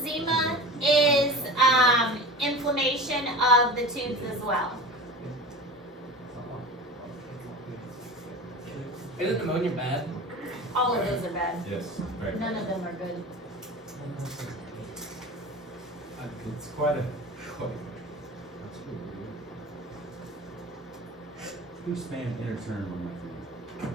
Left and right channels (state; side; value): normal; both; correlation 0.34